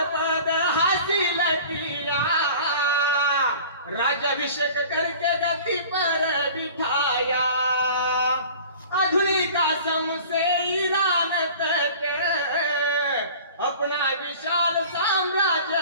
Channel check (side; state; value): both; inverted; correlation -0.43